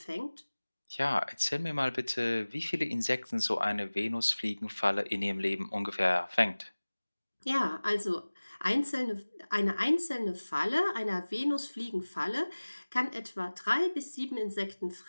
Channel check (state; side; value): inverted; both; correlation -1.00